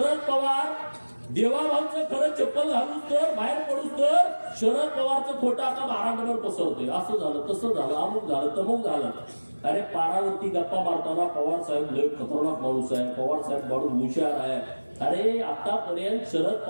पवार देवाभाऊचं खरं चप्पल घालून तर बाहेर पडूस तर शरद पवारचं खोटं आता महाराष्ट्रावर पसरतोय. असं झालं, तसं झालं, अमुक झालं, तमुक झालं. अरे पारावरती गप्पा मारताना पवार साहेब लय खतरनाक माणूस आहे, पवार साहेब माणूस हुशार आहे. अरे आतापर्यंत शरद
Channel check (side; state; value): both; inverted; correlation -1.00